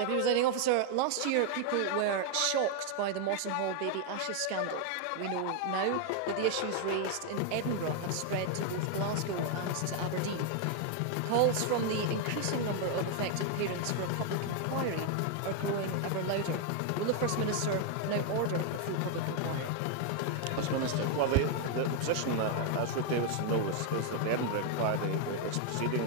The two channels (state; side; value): different; both; correlation 0.00